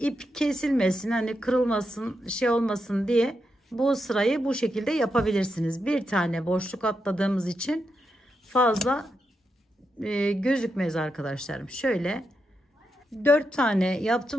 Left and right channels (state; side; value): normal; both; correlation 0.85